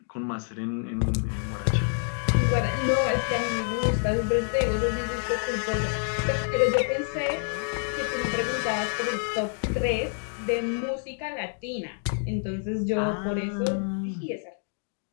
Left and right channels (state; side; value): silent; right; 60 dB below the other